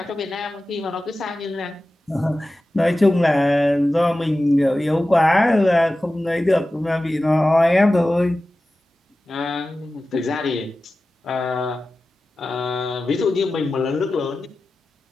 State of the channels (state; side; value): normal; both; correlation 0.95